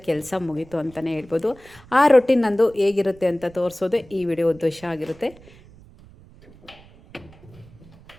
ಕೆಲಸ ಮುಗೀತು ಅಂತಲೇ ಹೇಳ್ಬೋದು. ಆ ರೊಟೀನ್ ನಂದು ಹೇಗಿರುತ್ತೆ ಅಂತ ತೋರಿಸೋದೇ ಈ ವಿಡಿಯೋ ಉದ್ದೇಶ ಆಗಿರುತ್ತೆ.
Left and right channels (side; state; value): right; noise; rumble, 23 dB below the sound